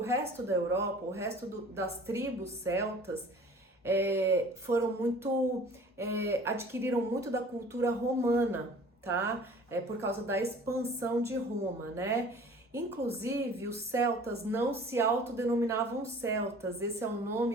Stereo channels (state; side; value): normal; both; correlation 0.47